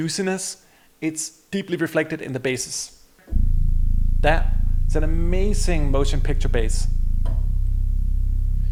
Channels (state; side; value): identical; both; correlation 1.00